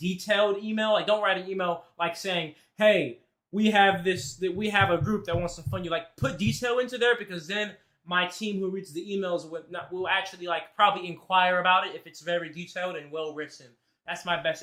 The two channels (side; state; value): both; identical; correlation 1.00